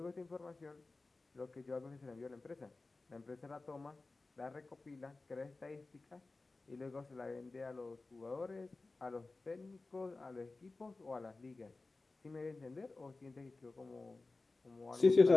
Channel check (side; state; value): right; quieter; 3.5 dB